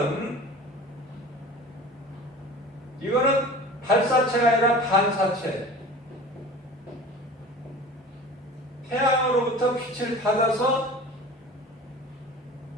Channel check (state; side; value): normal; both; correlation 0.39